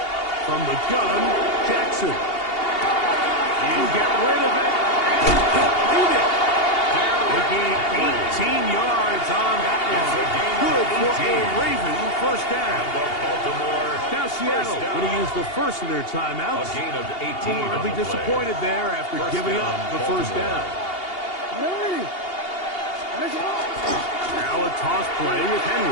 From the gun, Jackson. He'll get rid of it and complete it. They gained 18 yards on that one. Good for a Raven 1st down. Now Seattle going to use the first of their timeouts. A gain of 18. They'll be disappointed there after giving up the 1st down. Now a toss play with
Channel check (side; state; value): right; late; 2.8 ms